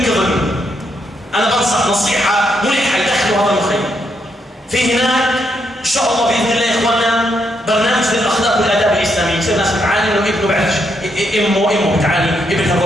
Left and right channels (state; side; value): normal; both; correlation 0.78